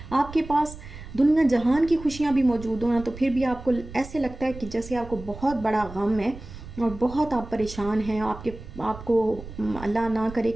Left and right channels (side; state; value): right; noise; rumble, 14 dB below the sound